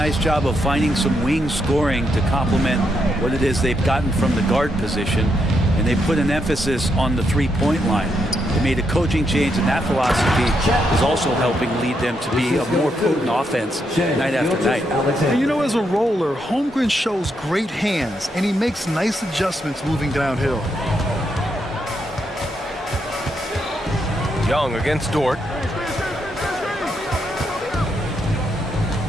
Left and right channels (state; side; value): normal; both; correlation 0.80